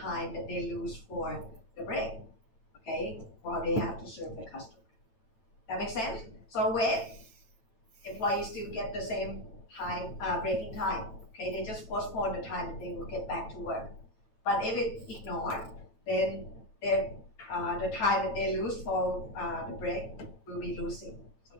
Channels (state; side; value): late; right; 9.0 ms